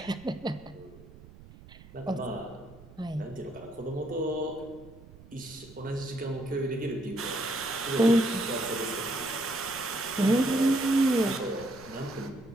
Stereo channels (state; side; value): noise; right; rumble, 20 dB below the sound